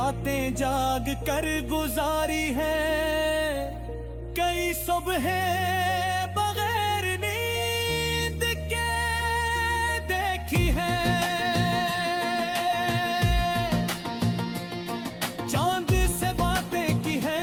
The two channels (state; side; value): identical; both; correlation 1.00